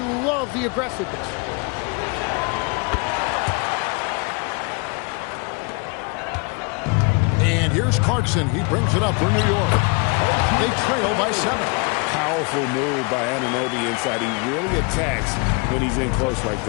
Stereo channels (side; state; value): right; quieter; 31.5 dB